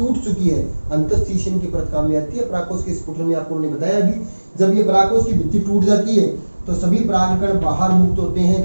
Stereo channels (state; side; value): inverted; both; correlation -1.00